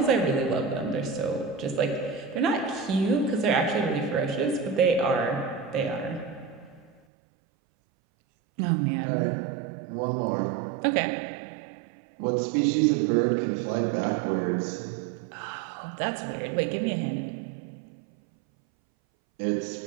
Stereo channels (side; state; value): left; drops out; at 7.0 s